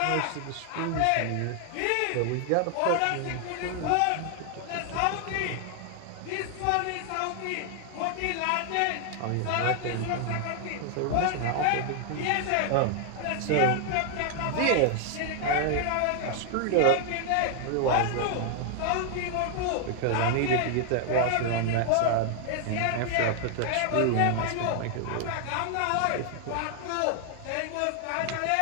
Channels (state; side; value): different; both; correlation 0.00